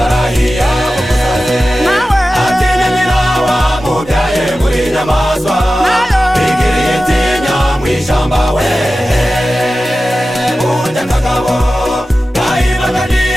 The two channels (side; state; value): both; normal; correlation 0.94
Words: atinya nyina wamubyaye muri nyamaswa bigiriye itinya mw'ishamba we burya akagabo gahibaga